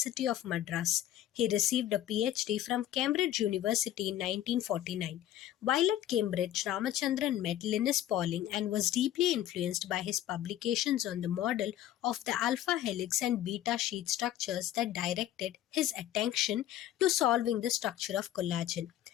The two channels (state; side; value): quieter; right; 12.5 dB